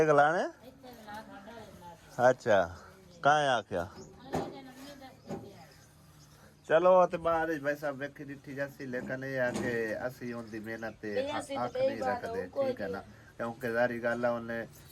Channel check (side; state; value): both; identical; correlation 1.00